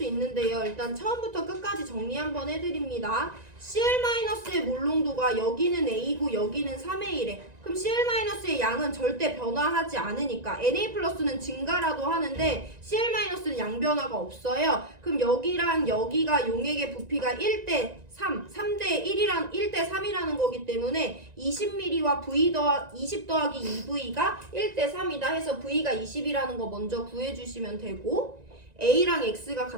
있는데요. 일단 처음부터 끝까지 정리 한번 해드립니다. Cl-의 몰농도가 여기는 A고 여기는 3A래. 그럼 Cl-의 양은 절대 변화하지 않으니까 Na 플러스는 증가라도 하는데 Cl-는 양변화가 없어요. 그럼 여기랑 여기가 용액의 부피가 1대3, 1대3이라는 거기 때문에 20ml와 V 20 더하기 2V가 1대3이다 해서 V가 20이라는 거 먼저 구해주시면 되고 A랑 X가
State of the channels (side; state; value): left; late; 1.9 ms